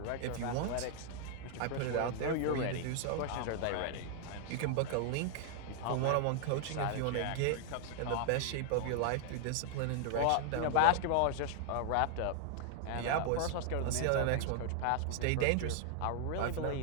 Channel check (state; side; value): different; both; correlation 0.00